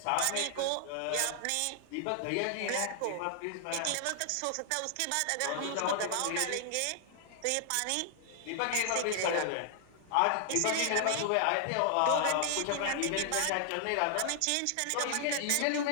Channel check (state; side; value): different; both; correlation 0.00